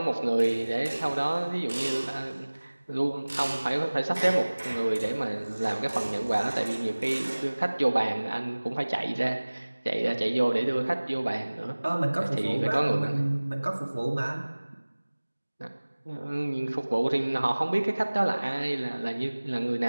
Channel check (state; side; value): inverted; both; correlation -1.00